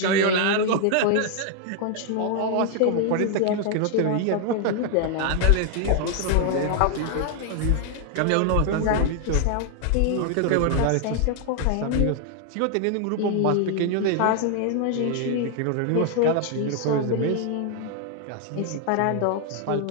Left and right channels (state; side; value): different; both; correlation 0.00